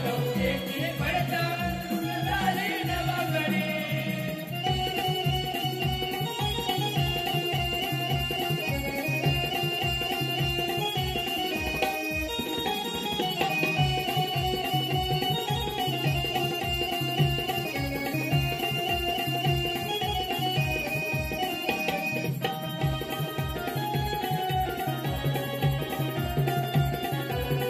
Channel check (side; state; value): both; identical; correlation 1.00